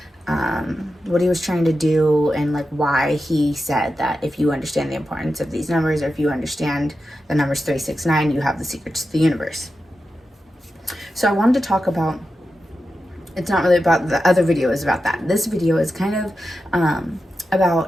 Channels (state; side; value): normal; both; correlation 0.90